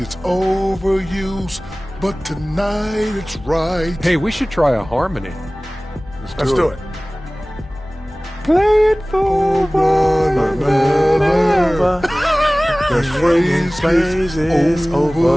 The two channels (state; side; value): normal; both; correlation 0.98